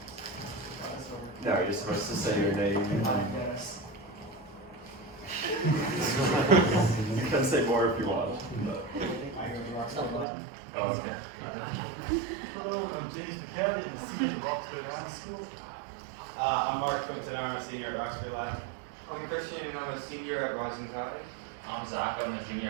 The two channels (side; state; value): left; drops out; at 10.2 s